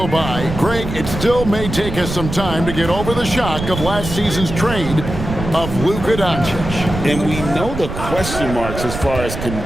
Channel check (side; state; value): right; noise; rumble, 7 dB below the sound